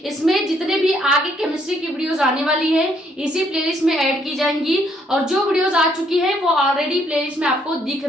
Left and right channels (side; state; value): both; normal; correlation 0.69